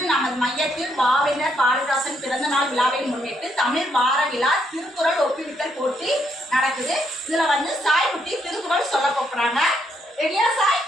நமது மையத்தில் பாவேந்தர் பாரதிதாசன் பிறந்த நாள் விழாவை முன்னிட்டு தமிழ் வார விழா திருக்குறள் ஒப்புவித்தல் போட்டி நடக்குது. இதுல வந்து சாய் குட்டி திருக்குறள் சொல்ல போறாங்க. ரெடியா சாய்?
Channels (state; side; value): normal; both; correlation 0.74